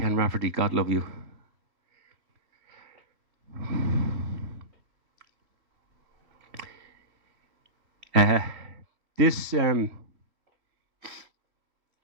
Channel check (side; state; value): left; late; 2.9 ms